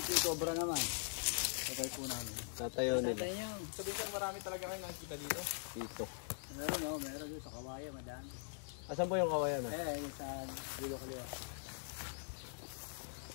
Cobra naman? Patay po namin. Tatayo nila. Patay niyo. Sabi ko marami talaga kayo nakikita dito. Dito. Meron doon sa Kawayan, madami. Asan po yung kawayan ah? Yung sa Dulo Kaliwa.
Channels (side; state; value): right; silent; digital silence